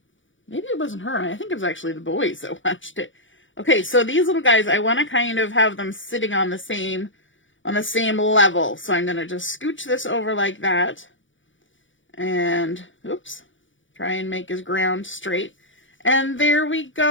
Maybe it wasn't her. I think it was actually the boys that watched it. Okay, so these little guys, I want to kind of have them sitting on the same level. So I'm going to just scooch this over like that. And, oops, try and make his ground straight. And there we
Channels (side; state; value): right; late; 0.56 ms